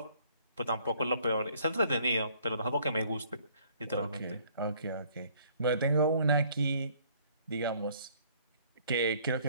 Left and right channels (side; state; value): both; inverted; correlation -0.60